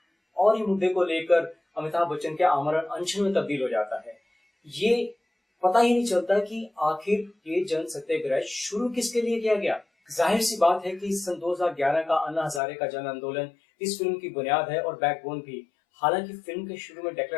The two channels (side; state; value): right; drops out; at 12.6 s